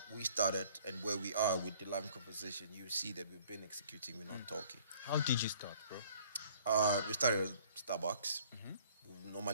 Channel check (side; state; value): both; inverted; correlation -0.56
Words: we started and where we are with the live conversation, you see that we've been executing, we're not talking. How did you start, bro? We started at Starbucks. We